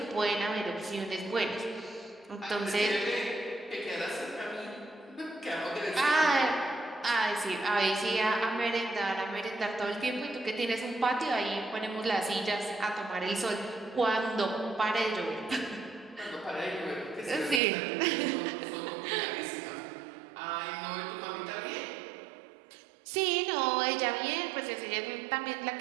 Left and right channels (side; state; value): left; drops out; at 17.6 s